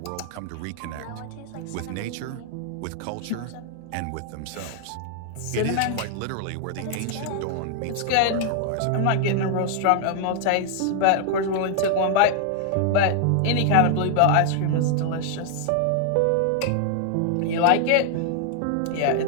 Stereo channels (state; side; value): different; both; correlation 0.00